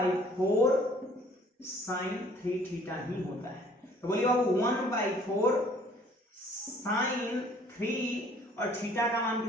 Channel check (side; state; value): both; normal; correlation 0.57